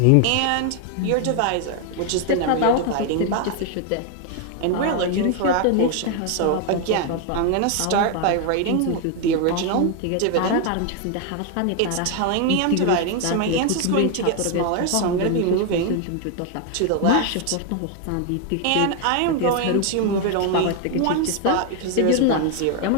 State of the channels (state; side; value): different; both; correlation 0.00